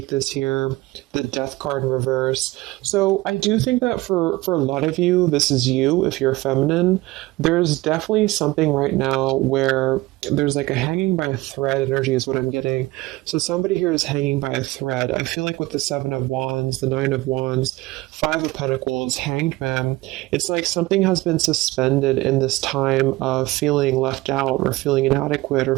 this here, the Death card in reverse. So I do think that for a lot of you, this is you if you're feminine. There's definitely something right now where there's like a hanging by a thread energy is what I'm getting. So somebody here is hanging by a thread. I feel like with the Seven of Wands, the Nine of Wands, Five of Pentacles, Hanged Man, it's like something has been suspended in this time of feeling left out or feeling inadequate or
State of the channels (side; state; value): left; quieter; 19.9 dB